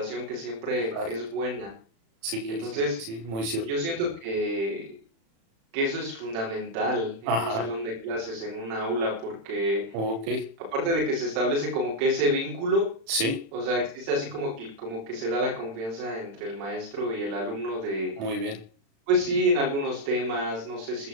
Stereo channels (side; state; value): left; late; 36 ms